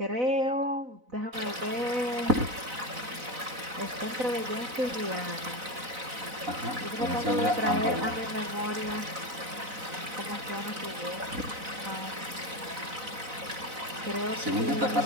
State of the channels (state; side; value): late; left; 4.0 ms